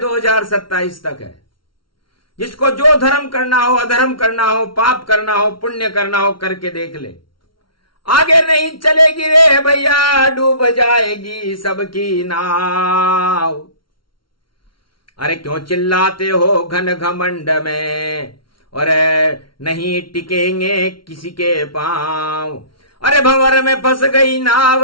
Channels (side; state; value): right; late; 0.74 ms